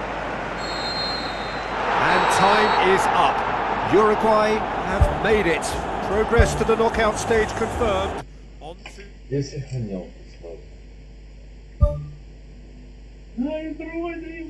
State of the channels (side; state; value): both; identical; correlation 1.00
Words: And time is up. Uruguay have made it. Progress to the knockout stage confirmed. On to... Я сохранял славу. Ай, вроде